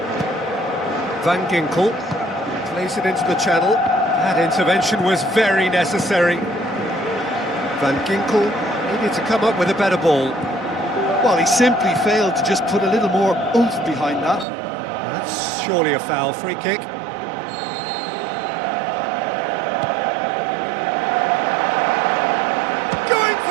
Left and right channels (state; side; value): drops out; left; at 14.5 s